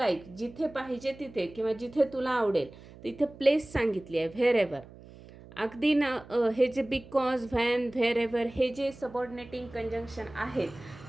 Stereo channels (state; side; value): noise; right; hum, 19 dB below the sound